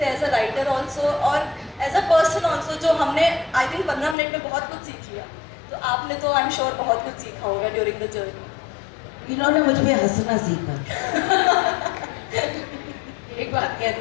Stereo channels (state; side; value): drops out; right; at 4.2 s